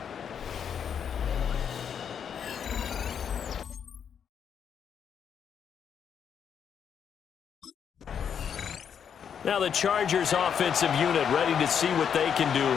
Now the Chargers offensive unit ready to see what they can do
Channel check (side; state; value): right; quieter; 7.8 dB